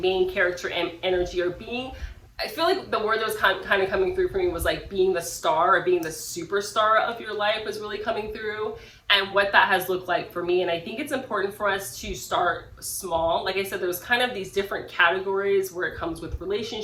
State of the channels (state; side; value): identical; both; correlation 1.00